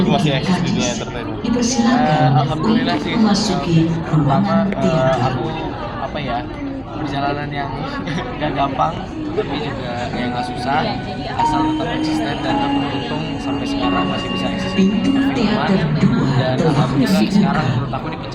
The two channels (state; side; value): identical; both; correlation 1.00